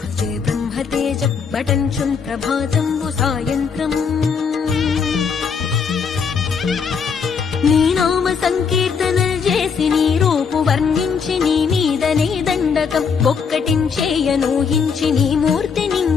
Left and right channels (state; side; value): quieter; right; 6.0 dB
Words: भजे ब्रह्मतेज पठञ्चुम् प्रभातम् सायन्त्रम् నీ నామ సంకీర్తనలు చేసి నీ రూపు వర్ణించి నీ మీదనే దండకం ఒక్కటించేయనూహించి నీ మూర్తి